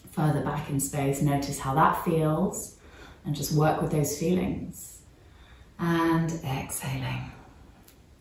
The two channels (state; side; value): identical; both; correlation 1.00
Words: further back in space. Notice how that feels and just work with those feelings. And exhaling.